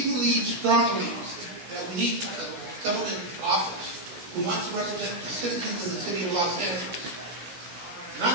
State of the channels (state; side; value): late; left; 16 ms